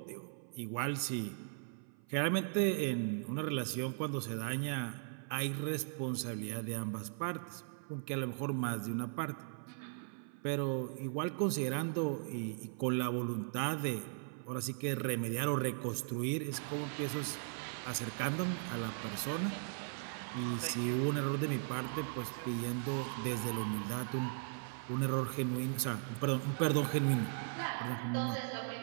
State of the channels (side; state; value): left; silent; 52 dB below the other